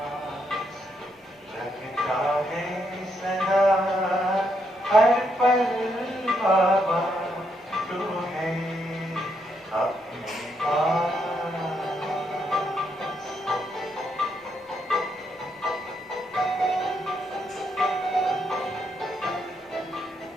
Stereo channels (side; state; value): both; normal; correlation 0.77